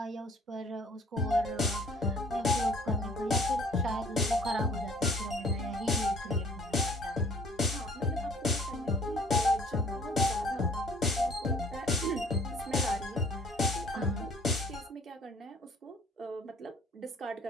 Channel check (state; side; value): normal; both; correlation 0.55